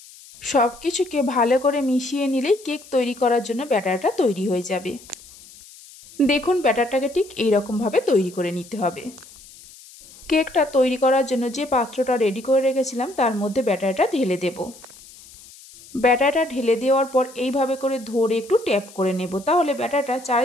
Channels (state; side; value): noise; left; hiss, 21 dB below the sound